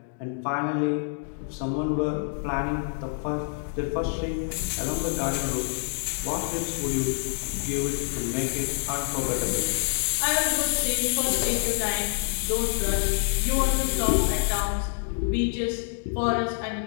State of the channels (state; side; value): silent; right; 56 dB below the other